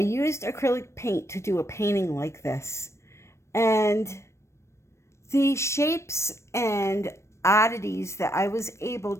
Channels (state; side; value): late; right; 0.13 ms